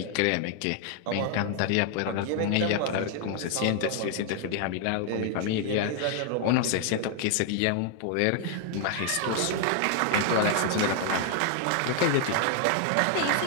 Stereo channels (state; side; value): different; both; correlation 0.00